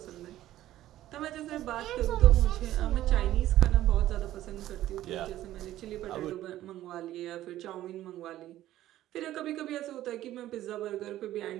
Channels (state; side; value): quieter; left; 13.9 dB